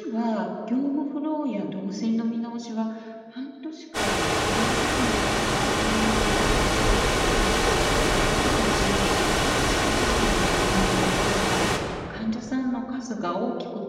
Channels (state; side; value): identical; both; correlation 1.00